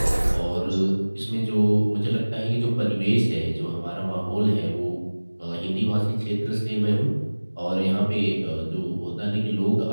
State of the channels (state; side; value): inverted; both; correlation -1.00